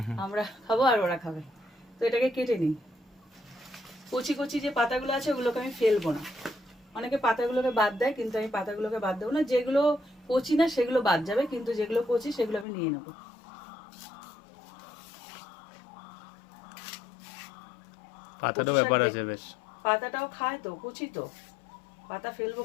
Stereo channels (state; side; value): drops out; right; at 12.7 s